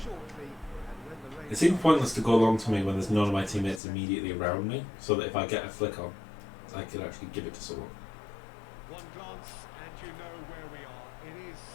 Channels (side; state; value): right; drops out; at 3.8 s